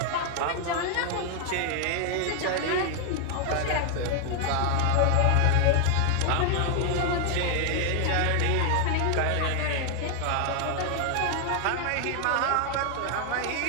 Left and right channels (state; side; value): different; both; correlation 0.00